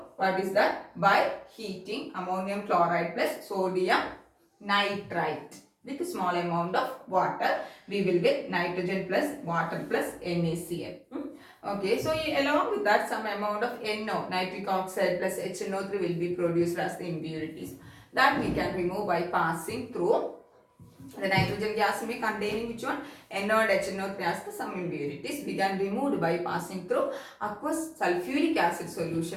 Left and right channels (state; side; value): identical; both; correlation 1.00